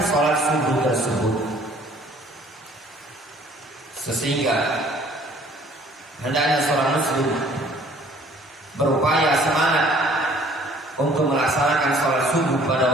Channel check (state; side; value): normal; both; correlation 0.56